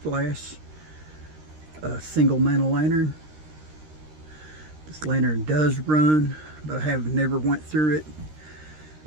single mantle lantern. This lantern does run, but I have never went through it.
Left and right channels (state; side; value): late; left; 13 ms